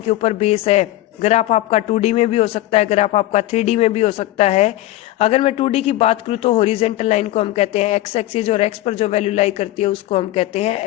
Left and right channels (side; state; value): right; quieter; 15.9 dB